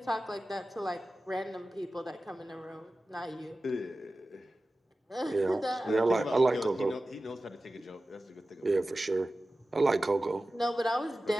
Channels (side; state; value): both; normal; correlation 0.95